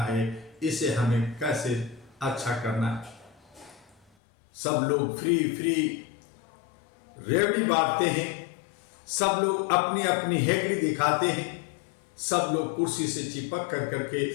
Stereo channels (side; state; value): right; drops out; at 4.0 s